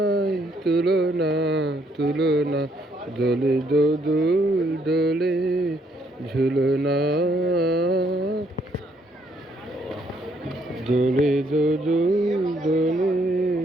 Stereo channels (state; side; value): normal; both; correlation 0.70